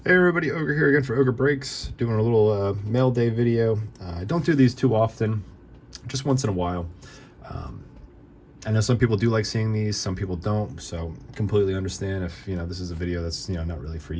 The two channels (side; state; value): both; identical; correlation 1.00